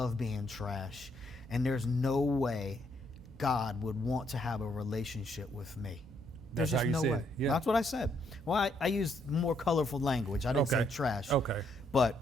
being trash. And there's no way God would want to have a relationship with me. There's just no way. Yeah. That's what I said. Well, I used more colorful language. I didn't say trash. Okay.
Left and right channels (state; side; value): normal; both; correlation 0.72